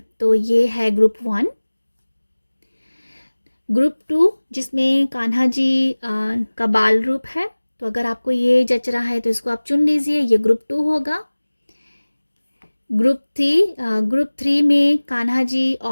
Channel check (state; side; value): inverted; both; correlation -1.00